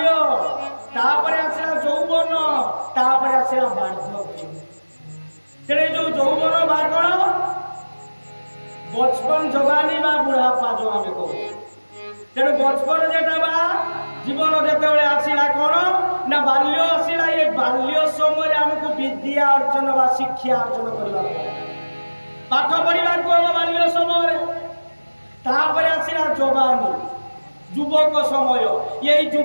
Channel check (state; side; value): inverted; both; correlation -1.00